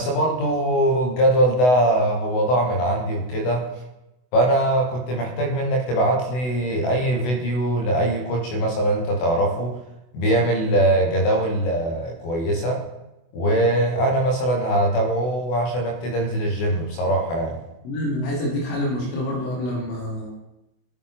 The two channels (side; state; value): right; late; 24 ms